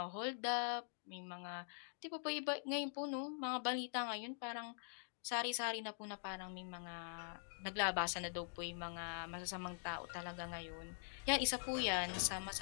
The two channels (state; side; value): silent; right; digital silence